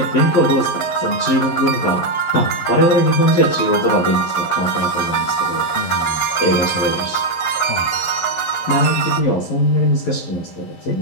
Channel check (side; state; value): right; late; 11 ms